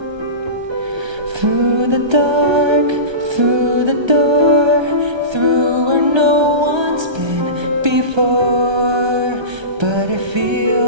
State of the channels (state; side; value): late; left; 1.3 ms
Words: Through the dark, through the door, through where no one's been before, but it